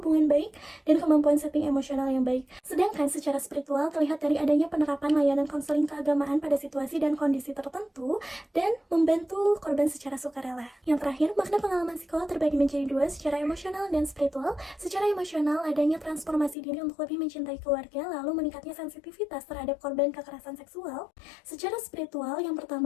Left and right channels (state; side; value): drops out; right; at 16.6 s